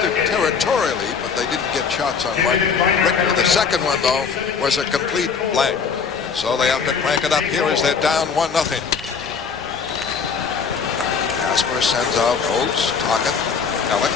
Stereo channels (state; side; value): quieter; right; 5.9 dB